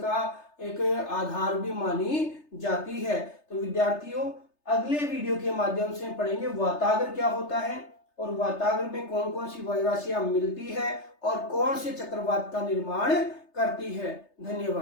एक आधार भी मानी जाती है। तो विद्यार्थियों अगले वीडियो के माध्यम से पढ़ेंगे वातागर क्या होता है और वातागर में कौन कौन सी वायु राशियां मिलती है और कौन से चक्रवात का निर्माण करती है।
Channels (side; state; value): right; late; 3.3 ms